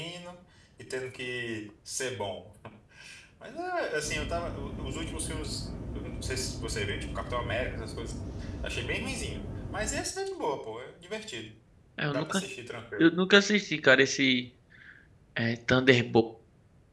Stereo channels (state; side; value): identical; both; correlation 1.00